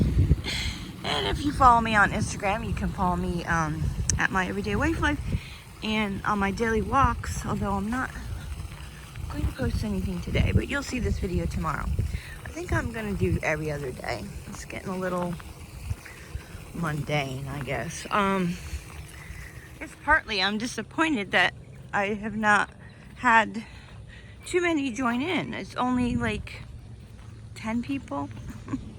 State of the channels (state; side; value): identical; both; correlation 1.00